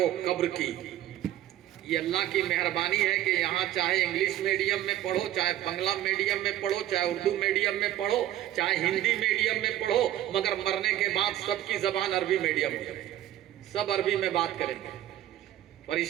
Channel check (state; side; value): quieter; left; 13.0 dB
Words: कब्र की। ये अल्लाह की मेहरबानी है कि यहाँ चाहे इंग्लिश मीडियम में पढ़ो, चाहे बांग्ला मीडियम में पढ़ो, चाहे उर्दू मीडियम में पढ़ो, चाहे हिंदी मीडियम में पढ़ो, मगर मरने के बाद सबकी जबान अरबी मीडियम हो जाए, सब अरबी में बात करेंगे।